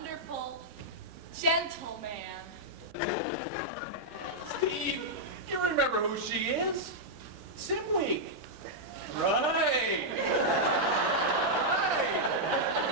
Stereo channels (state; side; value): normal; both; correlation -0.06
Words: gentleman. Steve, you remember who she is? Sim Week. Right.